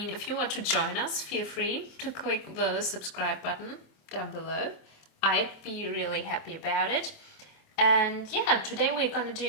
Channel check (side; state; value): right; late; 27 ms